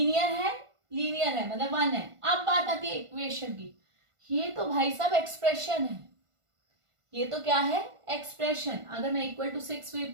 है, लीनियर है मतलब 1 है। अब बात आती है इक्वेशन की, ये तो भाई साहब एक्सप्रेशन है, ये तो क्या है एक्सप्रेशन। अगर मैं इक्वल टू 6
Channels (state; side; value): late; left; 1.5 ms